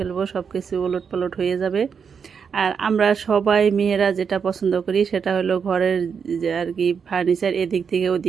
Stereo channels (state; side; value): quieter; left; 6.5 dB